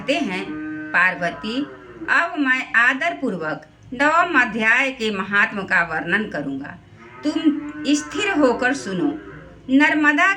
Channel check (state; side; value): identical; both; correlation 1.00